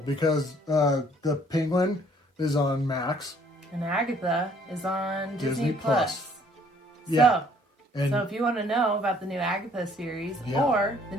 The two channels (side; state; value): both; normal; correlation 0.61